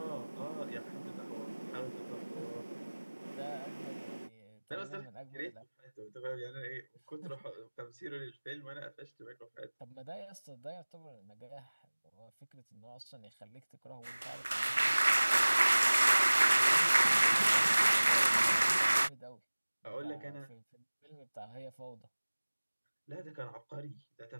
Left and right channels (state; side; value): inverted; both; correlation -1.00